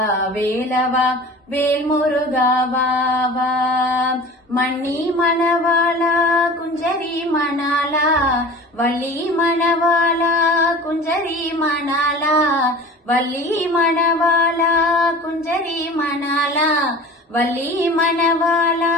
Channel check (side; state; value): both; normal; correlation 0.39